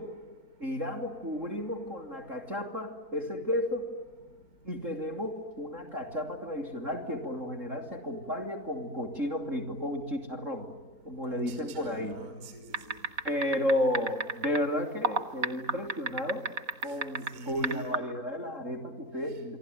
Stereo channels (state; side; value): late; left; 4.0 ms